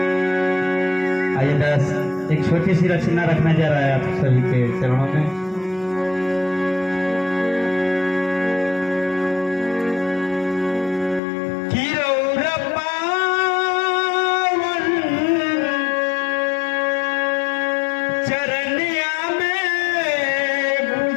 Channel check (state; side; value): drops out; right; at 11.2 s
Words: आइए दास एक छोटी सी रचना रखने जा रहा है आप सभी के चरणों में। चरनिया में